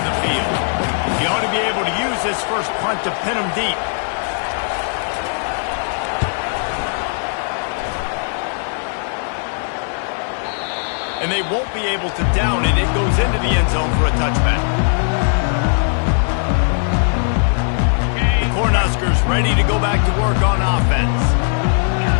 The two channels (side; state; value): right; silent; 61 dB below the other